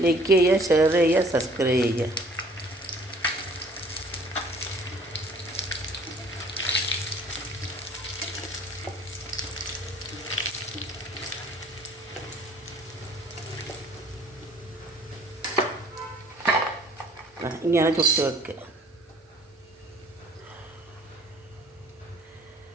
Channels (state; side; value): normal; both; correlation 0.54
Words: ലൈക്ക് ചെയ്യുക, ഷെയർ ചെയ്യുക, സബ്സ്ക്രൈബ് ചെയ്യുക. ഇങ്ങനെ ചുട്ട് വെക്കുക.